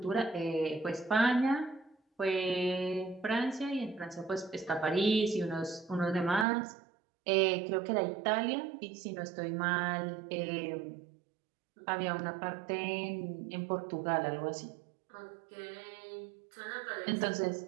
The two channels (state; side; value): drops out; left; at 6.5 s